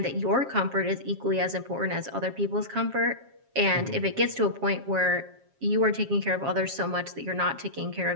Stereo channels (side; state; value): left; late; 7.4 ms